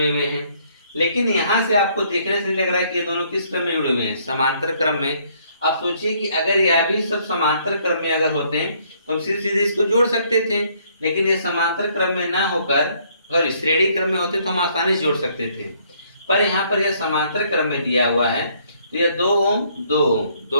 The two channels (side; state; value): both; inverted; correlation -0.66